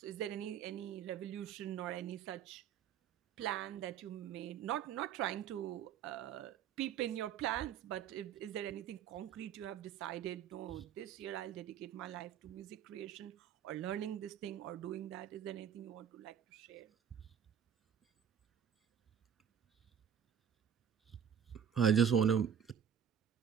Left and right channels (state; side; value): quieter; left; 8.4 dB